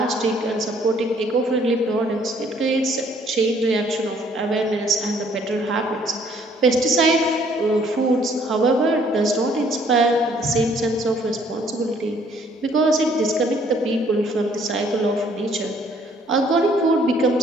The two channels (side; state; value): both; normal; correlation 0.62